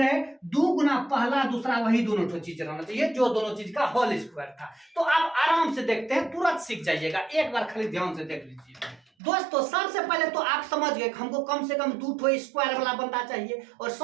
2 गुना पहला दूसरा वही दोनों ठो चीज रहना चाहिए जो दोनों चीज का होल स्क्वायर था। तो आप आराम से देखते हैं, तुरंत सीख जाइएगा, एक बार खाली ध्यान से देख लीजिए। दोस्तों, सबसे पहले तो आप समझ गए हमको कम से कम 2 ठो स्क्वायर वाला बंदा चाहिए और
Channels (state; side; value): drops out; left; at 9.0 s